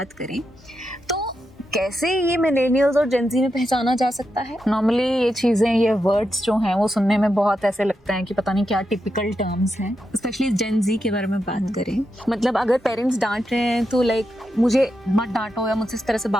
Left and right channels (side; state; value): both; normal; correlation 0.86